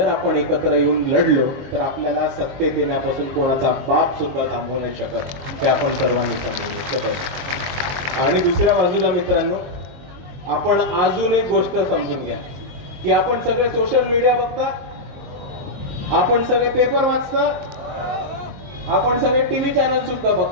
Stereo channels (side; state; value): left; late; 22 ms